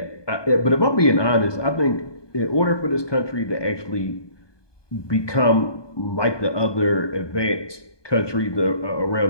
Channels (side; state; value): right; late; 1.2 ms